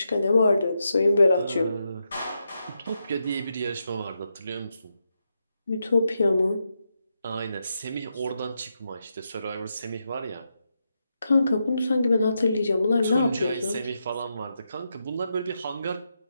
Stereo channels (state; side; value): inverted; both; correlation -0.85